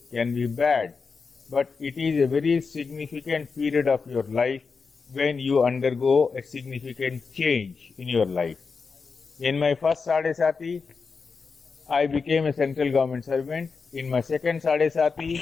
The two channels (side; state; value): right; quieter; 5.0 dB